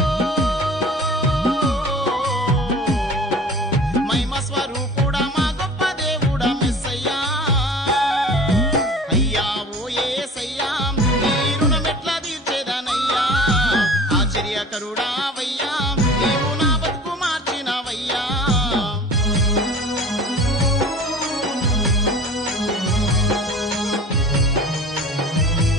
మహిమ స్వరూపుడా మా గొప్ప దేవుడా మెస్సయ్యా అయ్యా ఓ యేసయ్యా నీ రుణమెట్లా తీర్చేదనయ్యా ఆశ్చర్యకరుడావయ్యా నీవు నా బతుకు మార్చినవయ్యా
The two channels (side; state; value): both; normal; correlation 0.42